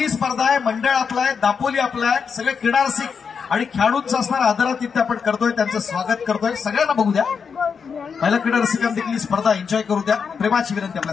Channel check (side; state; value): right; quieter; 6.1 dB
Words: स्पर्धा आहे, मंडळ आपलं आहे, दापोली आपलं आहे. सगळे क्रीडारसिक आणि खेळाडूंचं असणारा आदरातिथ्य आपण करतोय, त्यांचं स्वागत करतोय. सगळ्यांना बघू द्या. पहिल्या क्रीडारसिकांना देखील ही स्पर्धा एन्जॉय करू द्या. प्रेमाची विनंती